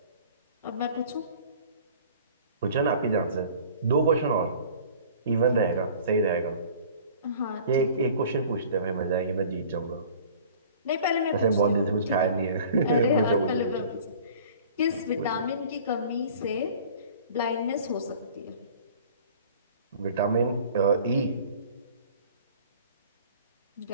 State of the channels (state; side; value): inverted; both; correlation -0.47